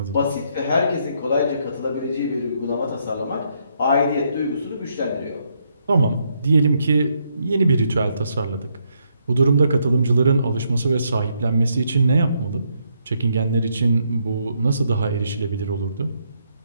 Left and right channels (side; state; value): both; inverted; correlation -0.75